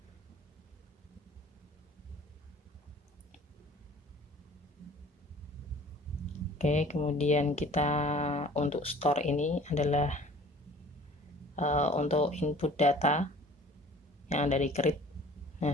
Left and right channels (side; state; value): both; normal; correlation 0.49